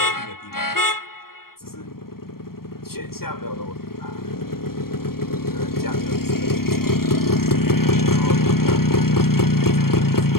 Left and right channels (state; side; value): late; right; 0.93 ms